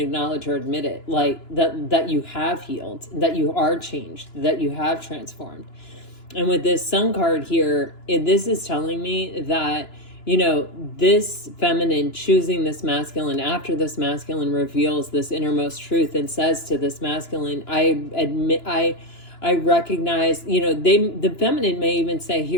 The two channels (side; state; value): right; late; 2.9 ms